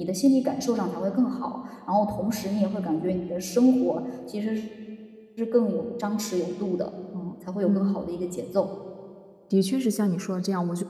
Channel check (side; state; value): both; identical; correlation 1.00